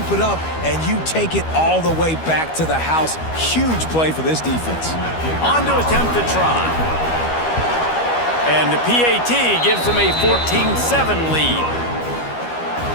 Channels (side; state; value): right; late; 12 ms